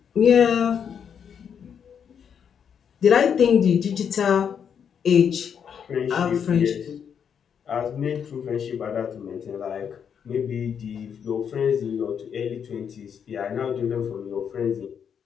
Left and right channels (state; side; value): quieter; right; 7.6 dB